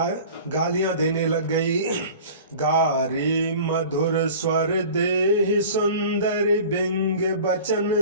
देने लग गई। गारी मधुर स्वर देहि सुंदर बिंग बचन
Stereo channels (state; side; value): inverted; both; correlation -0.41